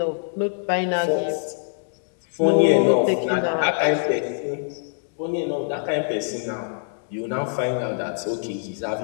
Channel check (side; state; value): right; silent; digital silence